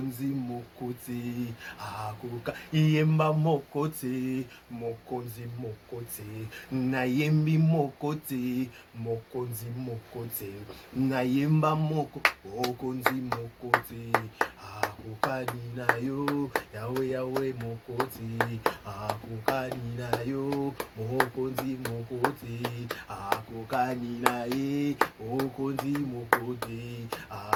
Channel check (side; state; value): both; identical; correlation 1.00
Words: mokote akoka yemba mokote mokonzi mokote nayembi mokote mokonzi mokote nayemba mokonzi mokote akokani na yo yawe mokote akokani na yo mokonzi mokote akokani na ye mokonzi mokote